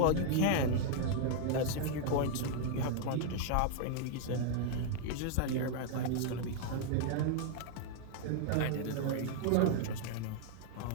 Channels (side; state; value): both; different; correlation 0.00